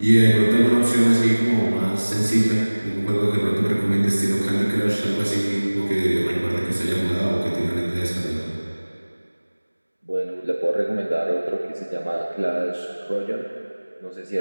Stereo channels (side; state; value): both; inverted; correlation -1.00